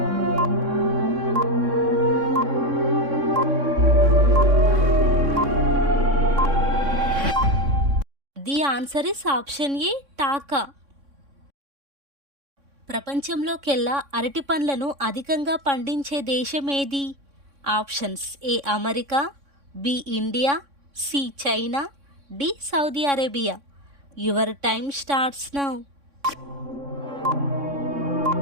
The answer is option A taka. ప్రపంచంలోకెల్లా అరటి పండ్లను అధికంగా పండించే దేశం ఏది? Options A America, B India, C China, D Saudi Arabia. Your time starts now.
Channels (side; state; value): left; late; 3.6 ms